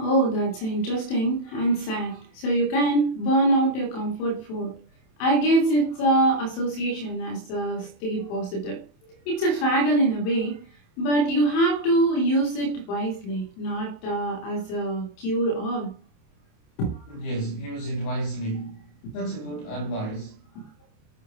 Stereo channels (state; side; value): late; right; 27 ms